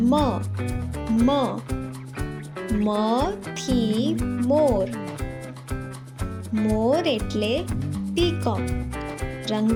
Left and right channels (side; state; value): both; identical; correlation 1.00